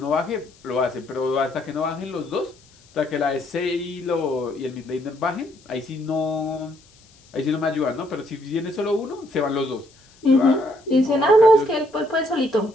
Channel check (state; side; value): noise; left; hiss, 28 dB below the sound